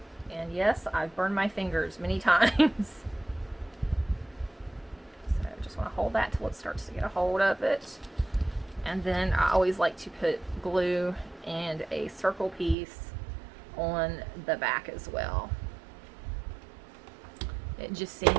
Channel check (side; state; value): left; drops out; at 12.8 s